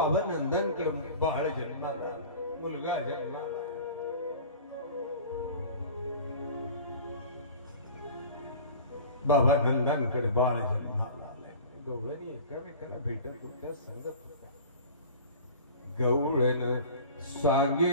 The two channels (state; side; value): inverted; both; correlation -0.40